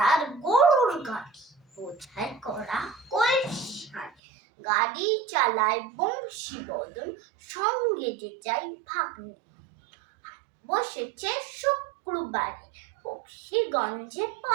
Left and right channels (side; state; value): left; drops out; at 4.1 s